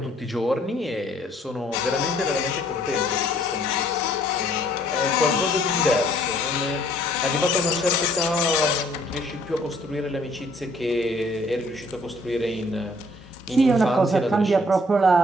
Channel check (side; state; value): both; normal; correlation 0.62